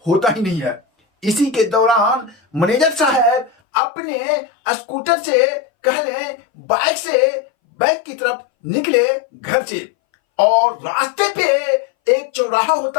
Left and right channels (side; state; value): right; drops out; at 3.5 s